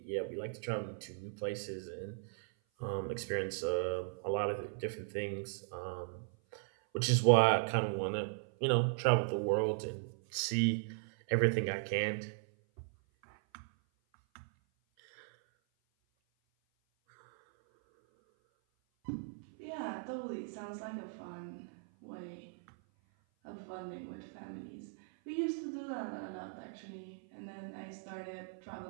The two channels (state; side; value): silent; left; 53 dB below the other